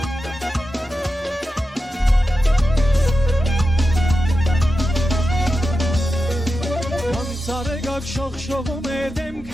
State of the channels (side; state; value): both; normal; correlation 0.91